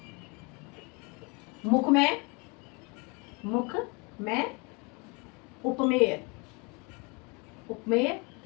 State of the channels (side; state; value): right; quieter; 30.2 dB